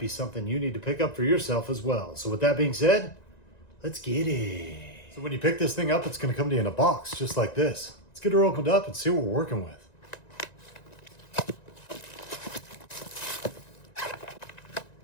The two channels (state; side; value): late; right; 1.9 ms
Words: something you need to pick up for yourself as well. So with that being said, let's get it. So when you pick this thing up, it's going to come to you in a box just like this. Let's get her opened up and see what we're working with.